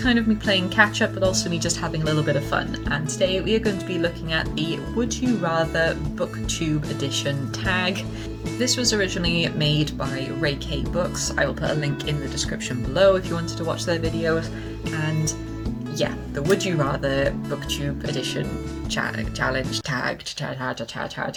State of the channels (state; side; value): identical; both; correlation 1.00